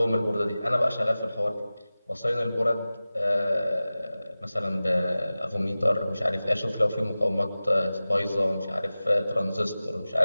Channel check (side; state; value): both; inverted; correlation -0.96